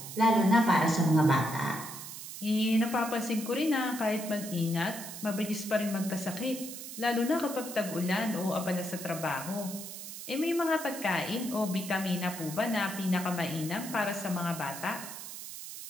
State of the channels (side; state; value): right; noise; hiss, 10 dB below the sound